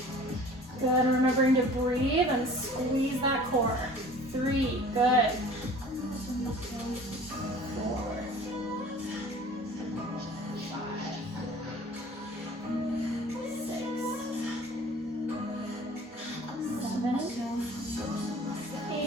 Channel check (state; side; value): normal; both; correlation 0.47